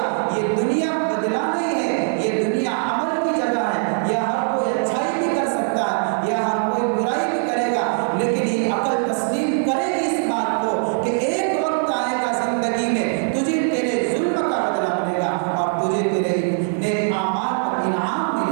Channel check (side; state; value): left; silent; 65 dB below the other